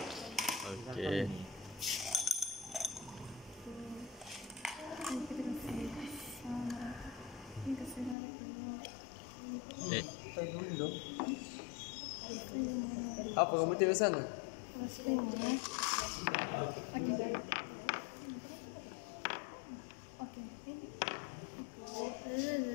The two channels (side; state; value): right; drops out; at 8.2 s